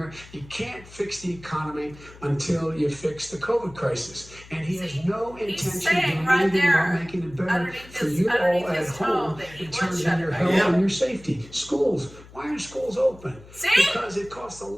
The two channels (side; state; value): left; noise; hum, 20 dB below the sound